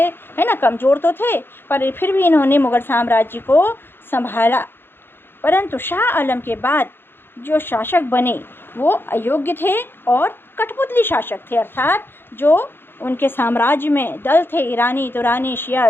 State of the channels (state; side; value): late; right; 0.10 ms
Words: है ना, कमज़ोर तो थे पर फिर भी इन्होंने मुग़ल साम्राज्य को संभाला। परंतु शाह आलम के बाद जो शासक बने वो अयोग्य थे और कठपुतली शासक थे, अर्थात जो उनके साम्राज्य में दल थे, ईरानी, तुरानी, शिया,